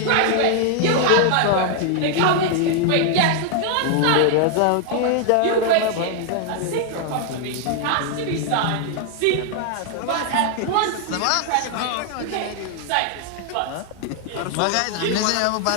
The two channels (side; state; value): both; different; correlation 0.00